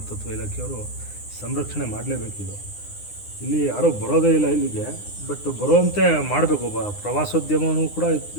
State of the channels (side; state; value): right; late; 9.8 ms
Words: ಇಲಾಖೆಯವರು ಸಂರಕ್ಷಣೆ ಮಾಡಲೇಬೇಕಿದು. ಇಲ್ಲಿ ಯಾರೂ ಬರೋದೇ ಇಲ್ಲ ಇಲ್ಲಿಗೆ, ಬಟ್ ಬರುವಂತೆ ಮಾಡಬೇಕು. ಪ್ರವಾಸೋದ್ಯಮವೂ ಕೂಡ